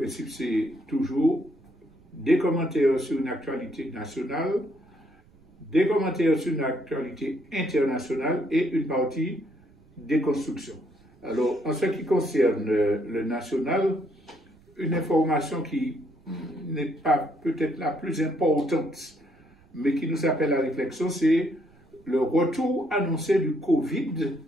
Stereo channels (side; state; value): right; noise; rumble, 29 dB below the sound